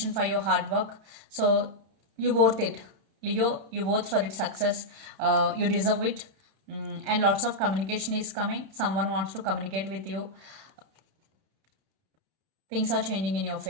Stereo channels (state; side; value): late; left; 31 ms